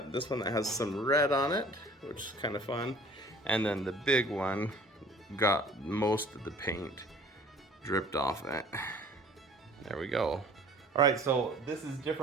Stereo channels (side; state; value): both; normal; correlation 0.49